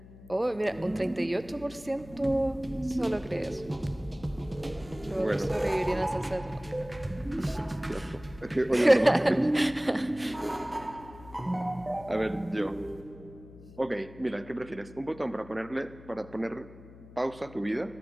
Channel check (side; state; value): left; noise; hum, 19 dB below the sound